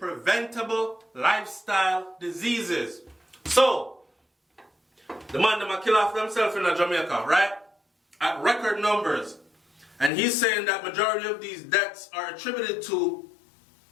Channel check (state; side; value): drops out; right; at 10.1 s